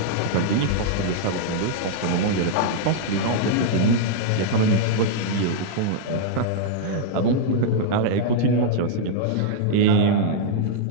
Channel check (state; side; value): different; both; correlation -0.01